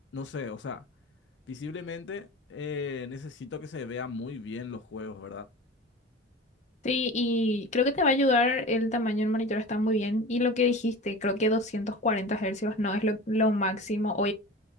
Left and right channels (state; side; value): normal; both; correlation 0.34